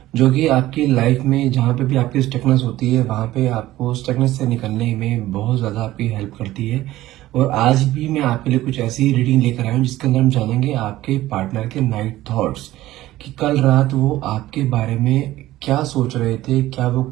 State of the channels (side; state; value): left; quieter; 15.7 dB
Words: जो कि आपकी लाइफ में जहां पे भी आपकी स्टकनेस होती है वहां पे आपको स्टकनेस से निकलने में बहुत ज़्यादा आपकी हेल्प करती है। और आज भी मैं आपके लिए कुछ ऐसी रीडिंग लेकर आया हूँ जिसके अंदर हम जानेंगे आपके पार्टनर के नाइट थॉट्स, कि कल रात वो आपके बारे में क्या सोच रहे थे, क्या वो